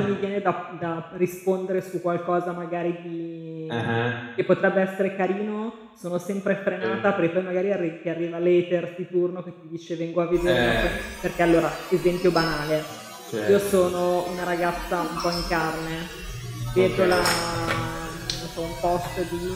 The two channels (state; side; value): identical; both; correlation 1.00